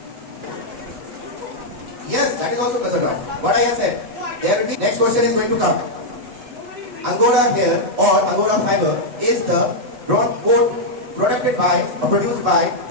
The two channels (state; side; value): late; left; 8.1 ms